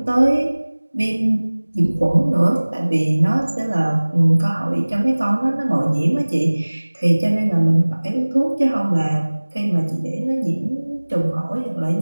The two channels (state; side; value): inverted; both; correlation -1.00